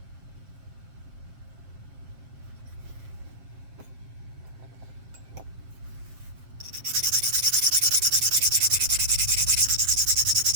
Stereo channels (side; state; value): left; late; 7.6 ms